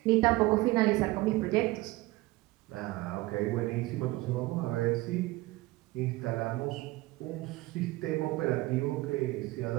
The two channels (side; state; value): left; quieter; 19.9 dB